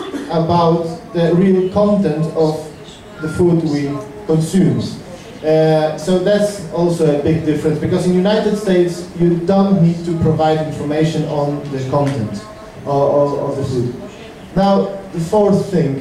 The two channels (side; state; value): both; identical; correlation 1.00